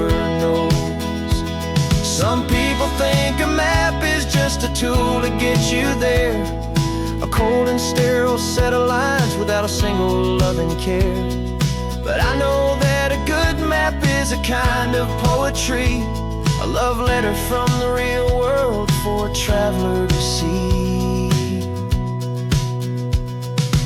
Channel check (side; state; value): both; identical; correlation 1.00